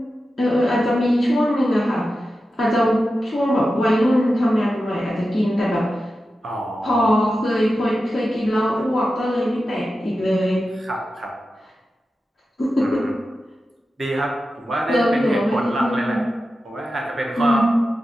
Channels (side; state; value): both; normal; correlation 0.92